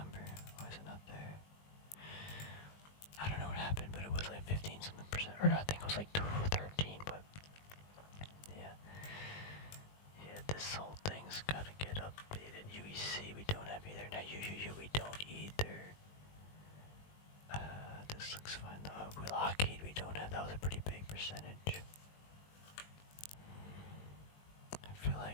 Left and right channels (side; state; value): right; late; 20 ms